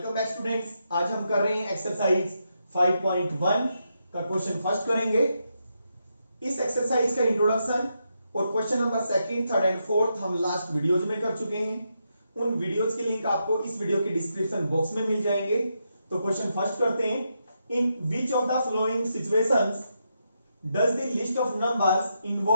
back students. आज हम कर रहे हैं एक्सरसाइज 5.1 का क्वेश्चन फर्स्ट करेंगे। इस एक्सरसाइज का इंट्रोडक्शन और question number second, third and fourth हम लास्ट वीडियोज में कर चुके हैं। उन वीडियोज के लिंक आपको इस वीडियो के डिस्क्रिप्शन बॉक्स में मिल जाएंगे। तो क्वेश्चन फर्स्ट करते हैं। In which of the following situations does the list of numbers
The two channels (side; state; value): both; inverted; correlation -0.83